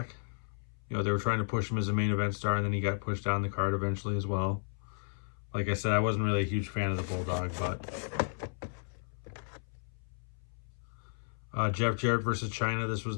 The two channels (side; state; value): right; silent; 55 dB below the other